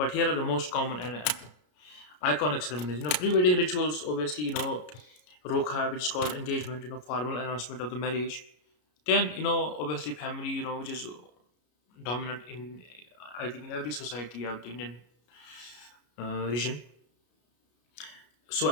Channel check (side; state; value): right; late; 33 ms